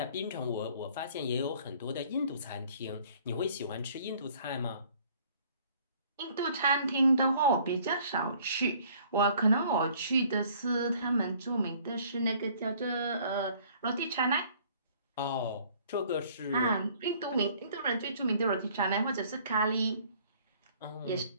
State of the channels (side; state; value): both; inverted; correlation -0.57